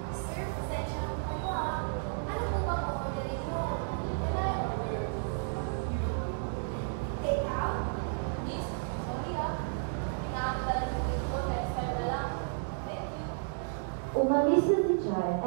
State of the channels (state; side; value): silent; left; digital silence